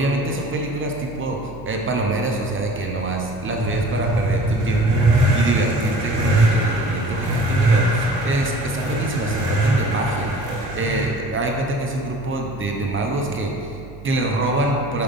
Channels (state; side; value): noise; right; hum, 17 dB below the sound